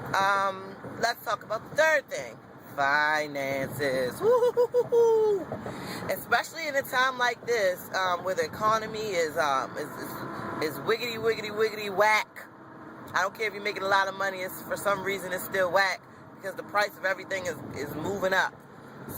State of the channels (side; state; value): both; identical; correlation 1.00